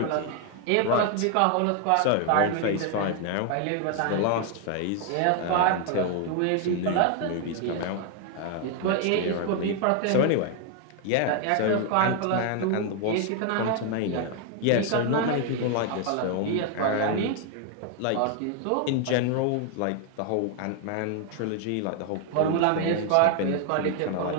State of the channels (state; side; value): different; both; correlation 0.00